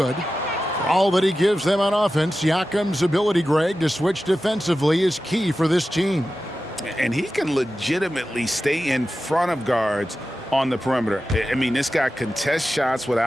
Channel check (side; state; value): both; normal; correlation 0.93